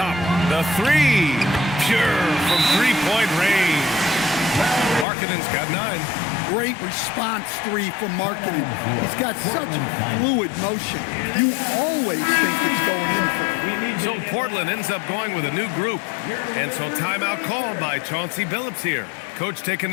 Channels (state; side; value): drops out; right; at 5.1 s